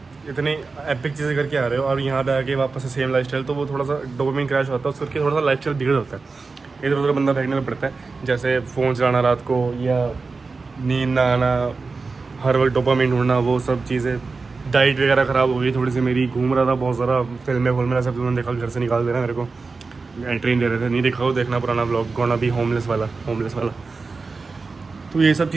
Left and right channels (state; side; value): quieter; left; 4.2 dB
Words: इतनी एपिक चीज़ें करके आ रहे हो और यहाँ पे आके वापस से सेम लाइफस्टाइल, तो वो थोड़ा सा डोपामिन क्रैश होता है, उसके करके थोड़ा सा लाइफस्टाइल बिगड़ होता है, इधर उधर बंदा फेंकने में पड़ता है। जैसे फ़ोन चलाना रात को या नींद ना आना, हर वक्त डोपामिन ढूंढना, वो सब चीज़ें। डाइट वगैरह ख़राब हो गई थोड़ी सी मेरी, घूम रहा था बहुत ज़्यादा, फिल्में सब तुमने देखा, घर से निकाल देना मेरे को, एंट्री दे रहे थे, नहीं देखा हो देखना पुराना ब्लॉग, गोना भी होमलेस वाला। तो ये सब